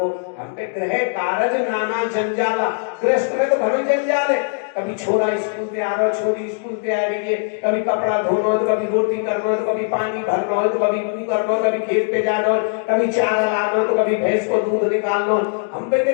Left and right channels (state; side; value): silent; right; digital silence